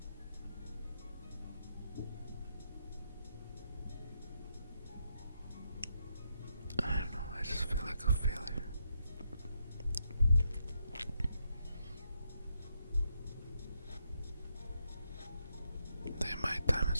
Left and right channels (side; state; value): both; inverted; correlation -0.80